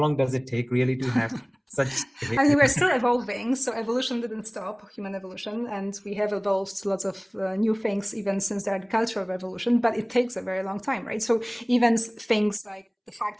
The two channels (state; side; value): identical; both; correlation 1.00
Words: does it take really to have such behavior? We're still evolving, so evolution didn't stop, human evolution, and we have evolved lots of new things even since the agricultural revolution, but it takes a very long time, right? So even things like the fact